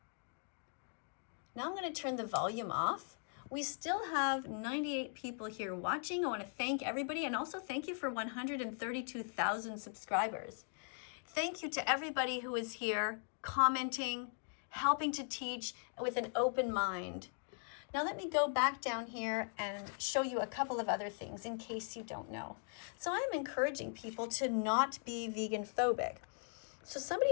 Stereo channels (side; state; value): right; silent; 51 dB below the other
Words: Now I'm going to turn the volume off. We still have 98 people here watching. I want to thank everybody, and also thank you for 132,000 subscribers. Thank you to everybody who is here commenting, helping to teach with an open mind. Now let me go back down here and show you a couple of other things in case you don't know. So I'm encouraging people to not be vegan phobic. So